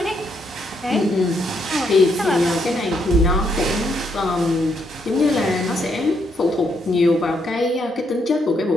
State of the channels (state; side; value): normal; both; correlation 0.75